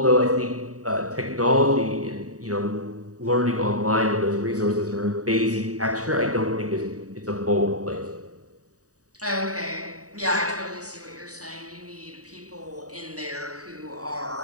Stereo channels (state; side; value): late; left; 0.66 ms